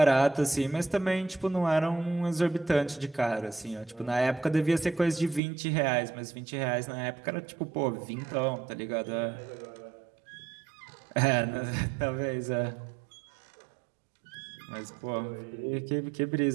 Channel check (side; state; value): left; drops out; at 5.4 s